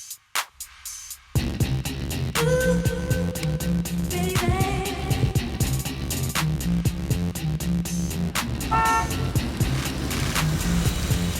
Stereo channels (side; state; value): both; identical; correlation 1.00